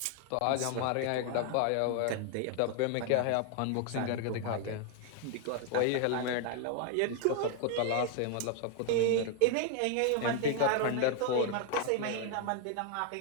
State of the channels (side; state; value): both; different; correlation 0.00